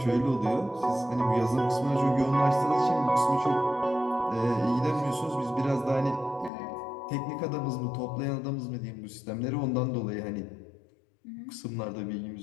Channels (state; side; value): drops out; right; at 6.5 s